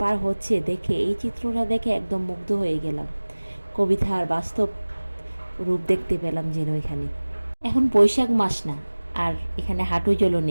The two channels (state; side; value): inverted; both; correlation -1.00